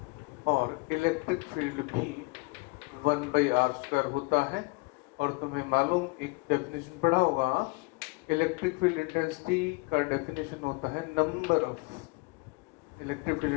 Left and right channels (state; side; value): quieter; right; 27.2 dB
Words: और electric field भी 1 by are square होता है। और तुम्हें मालूम, एक डेफिनेशन पढ़ा होगा, इलेक्ट्रिक फील्ड इंटेंसिटी का डेफिनेशन होता है number of electric field